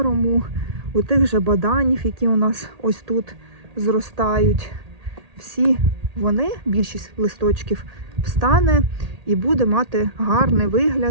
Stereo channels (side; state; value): left; late; 1.8 ms